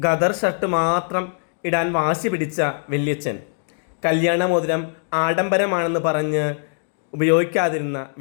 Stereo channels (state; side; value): silent; right; digital silence